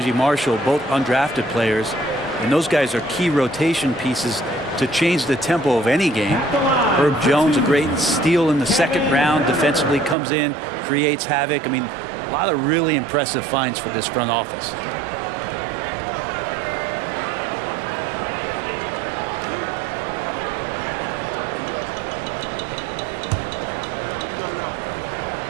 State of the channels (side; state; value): left; drops out; at 10.2 s